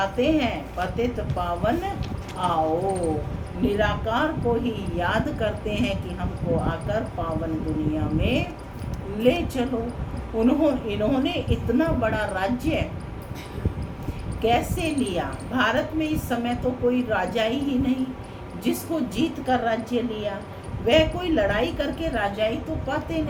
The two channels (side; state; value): both; identical; correlation 1.00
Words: हैं पतित पावन आओ। निराकार को ही याद करते हैं कि हमको आकर पावन दुनिया में ले चलो। इन्होंने इतना बड़ा राज्य कैसे लिया। भारत में इस समय तो कोई राजा ही नहीं जिसको जीत कर राज्य लिया। वह कोई लड़ाई करके राजाई तो पाते